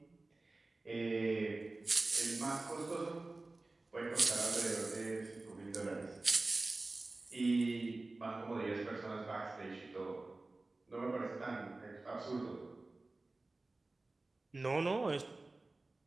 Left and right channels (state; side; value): quieter; left; 3.2 dB